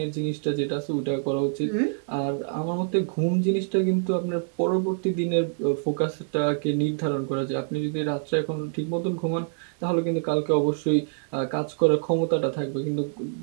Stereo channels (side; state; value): left; silent; digital silence